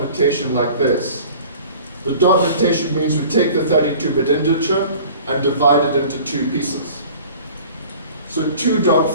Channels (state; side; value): inverted; both; correlation -0.46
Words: like this. The dot notation means we take the 32-bit integer and divide it into two pieces. So